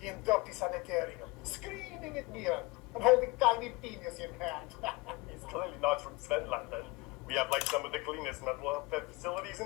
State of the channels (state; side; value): quieter; right; 24.3 dB